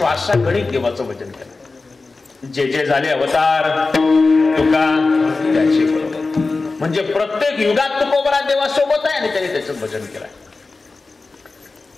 देवाचं भजन केलंय. जे जे झाले अवतार तुका त्याची बरोबर म्हणजे प्रत्येक युगात तुकोबराय देवासोबत आहे आणि त्याने त्याचं भजन केलंय.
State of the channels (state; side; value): quieter; right; 3.8 dB